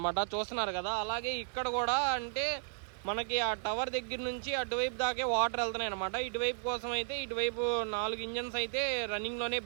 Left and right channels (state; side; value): silent; left; digital silence